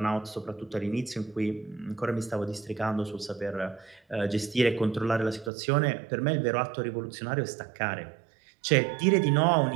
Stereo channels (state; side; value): drops out; left; at 5.5 s